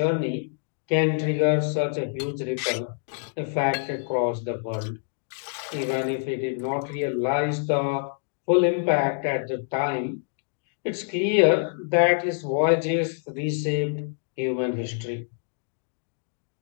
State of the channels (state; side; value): silent; right; digital silence